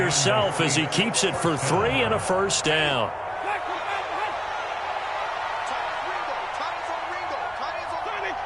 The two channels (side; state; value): both; identical; correlation 1.00